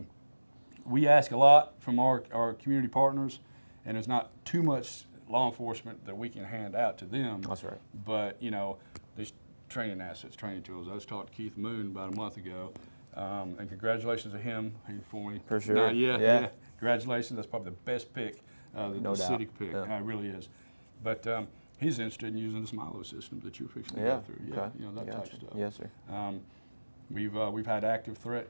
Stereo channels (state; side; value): inverted; both; correlation -1.00